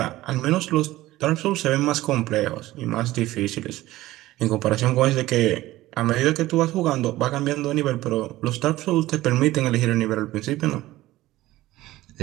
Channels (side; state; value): left; quieter; 16.7 dB